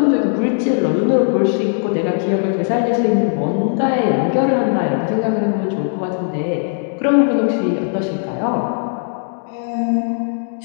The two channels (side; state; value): right; silent; 66 dB below the other